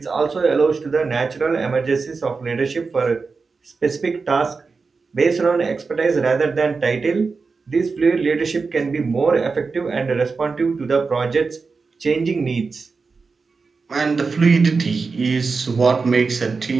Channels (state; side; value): quieter; left; 4.6 dB